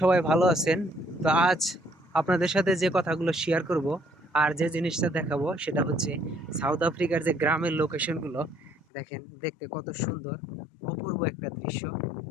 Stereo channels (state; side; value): drops out; right; at 8.8 s